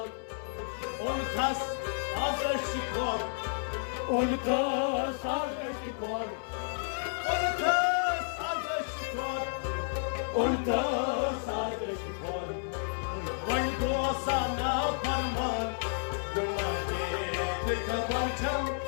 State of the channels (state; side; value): silent; right; 57 dB below the other